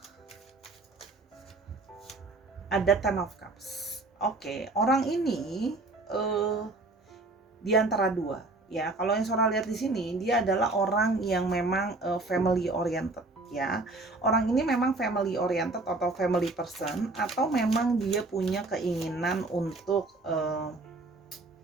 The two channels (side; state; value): left; quieter; 3.1 dB